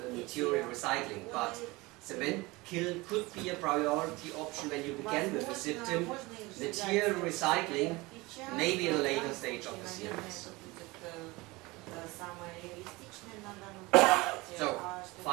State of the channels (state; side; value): quieter; left; 22.7 dB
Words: material recycling, but cement kiln could be a priority option when you begin with the system. Material recycling maybe in a later stage of the CMS. So